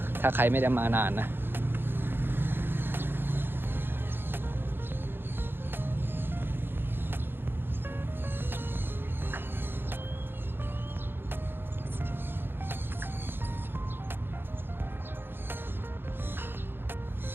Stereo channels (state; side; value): late; left; 0.10 ms